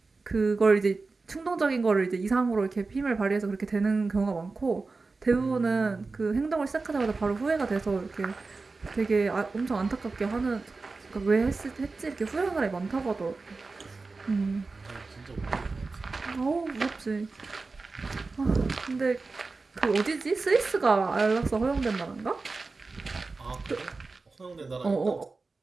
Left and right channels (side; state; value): left; quieter; 3.9 dB